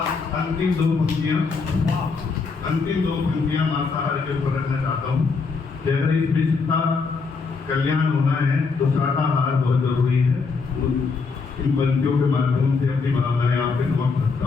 अंतिम दो पंक्तियां मांसाहार के ऊपर रखना चाहता हूँ कि अगर इस विश्व का कल्याण होना है तो शाकाहार बहुत जरूरी है। इन पंक्तियों के माध्यम से अपनी भावनाएं आपके समक्ष रखता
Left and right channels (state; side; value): quieter; right; 4.6 dB